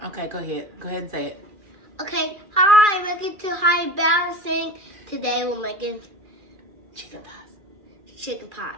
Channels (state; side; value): late; left; 2.4 ms